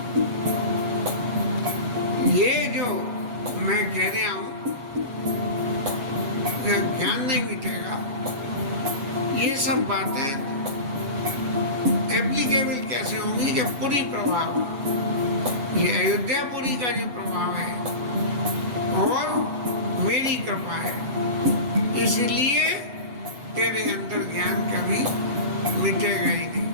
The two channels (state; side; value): late; left; 7.2 ms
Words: ये जो मैं कह रहा हूं ज्ञान नहीं मिटेगा, ये सब बातें एप्लीकेबल कैसे होंगी कि पूरी प्रभाव, ये अयोध्यापुरी का जो प्रभाव है और मेरी कृपा है, इसलिए तेरे अंदर ज्ञान कभी मिटेगा ही नहीं।